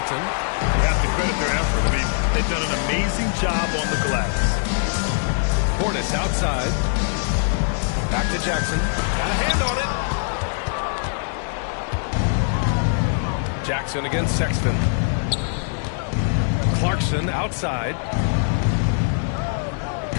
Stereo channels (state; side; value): silent; right; digital silence